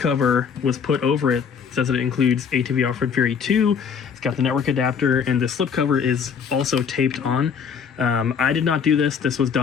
was put over it. It says that it includes ATV Off-Road Fury 2. It's got the network adapter, and the slipcover is also taped on. I did not do this. This was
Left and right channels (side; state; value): right; quieter; 6.7 dB